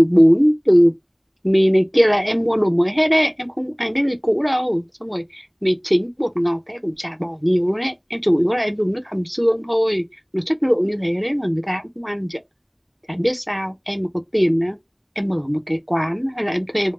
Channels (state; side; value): identical; both; correlation 1.00